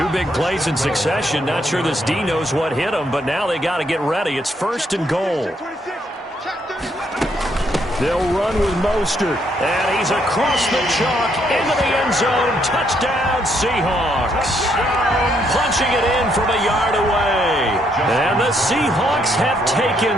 big plays in succession. Not sure this D knows what hit him, but now they got to get ready. It's 1st and goal. They'll run with Mostert. And he's across the chalk into the end zone. Touchdown, Seahawks. Punching it in from a yard away. And the Seahawks have taken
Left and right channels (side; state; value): both; normal; correlation 0.73